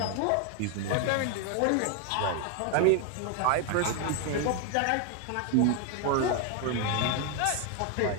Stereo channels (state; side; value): different; both; correlation 0.01